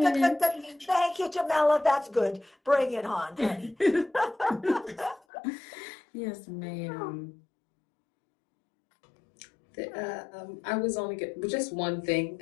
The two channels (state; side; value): drops out; right; at 5.2 s